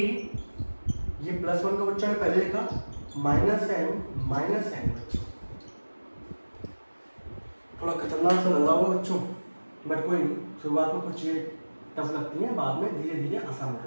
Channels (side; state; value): both; inverted; correlation -1.00